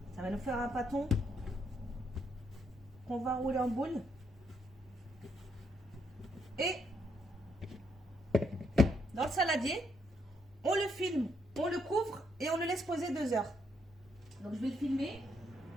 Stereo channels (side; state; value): both; normal; correlation 0.75